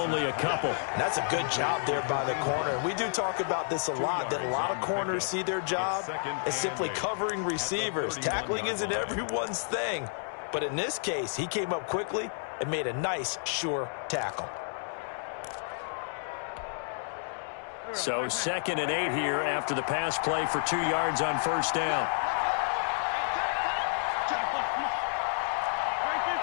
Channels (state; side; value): silent; right; digital silence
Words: a couple. And that's a good job there by the corner. We do talk about this a lot, that a lot of corners see their job as simply covering receivers. Tackling isn't everyone's thing. But in this case, he came up quickly and made a nice, sure tackle. So 2nd and 8 here after the pass play for 2 yards on first down.